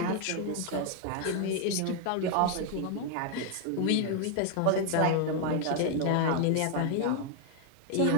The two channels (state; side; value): different; both; correlation 0.00